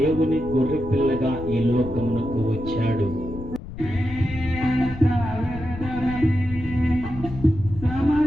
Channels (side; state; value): left; noise; rumble, 11 dB below the sound